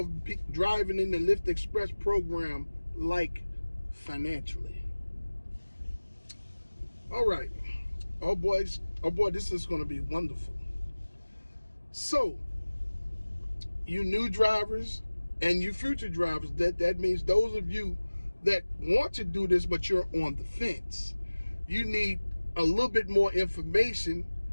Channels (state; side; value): inverted; both; correlation -1.00